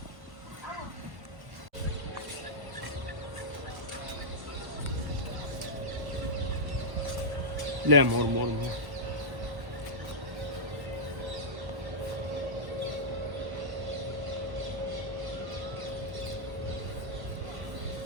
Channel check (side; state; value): left; late; 1.1 ms